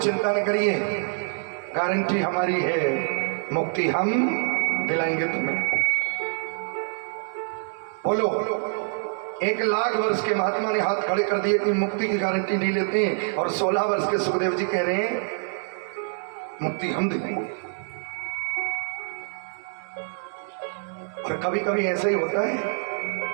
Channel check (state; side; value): silent; left; digital silence